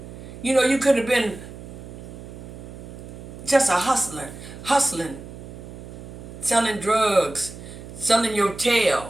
You know, you could have been just a hustler, hustling, selling drugs, selling your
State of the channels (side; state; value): right; noise; hum, 13 dB below the sound